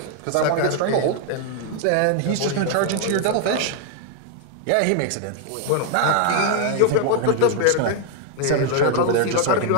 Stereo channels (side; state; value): both; different; correlation 0.00